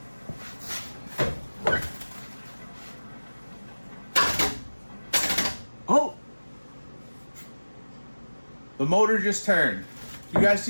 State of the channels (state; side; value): inverted; both; correlation -1.00